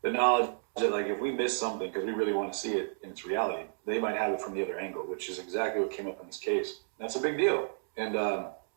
the knowledge that, like, if we miss something because we really want to see it in its reality, they might have it from the other angle, which is exactly what came up in this case. That's a big deal. And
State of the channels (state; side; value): silent; left; digital silence